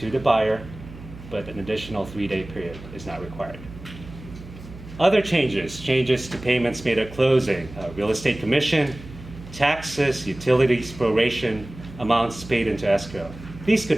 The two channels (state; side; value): noise; right; hum, 15 dB below the sound